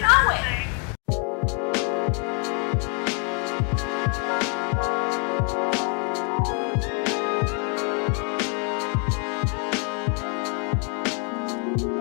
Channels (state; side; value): quieter; right; 36.1 dB